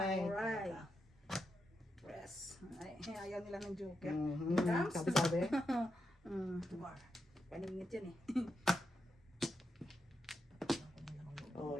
alright. Press. Ay, ayaw nila ng joker. Mhm. Dams? Sabi-sabi. Paningit yan eh.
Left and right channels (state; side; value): normal; both; correlation 0.85